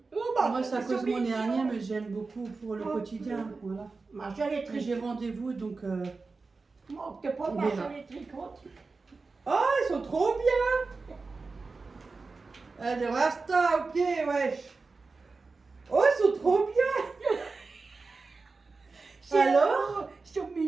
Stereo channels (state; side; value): quieter; left; 4.1 dB